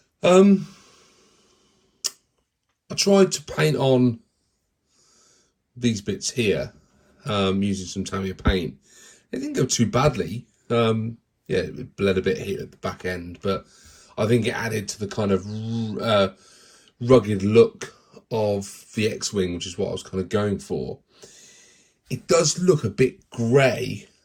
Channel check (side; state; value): both; identical; correlation 1.00